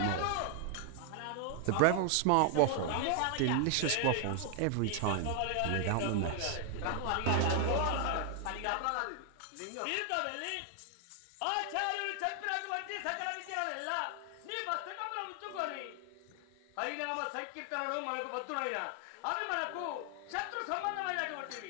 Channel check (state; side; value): different; both; correlation 0.00